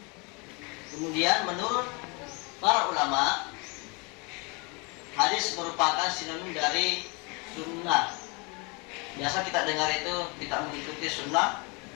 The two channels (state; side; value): quieter; right; 30.2 dB